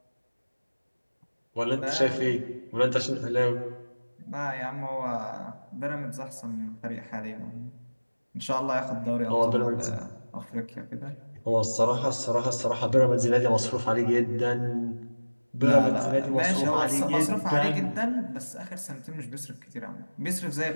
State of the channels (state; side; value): inverted; both; correlation -1.00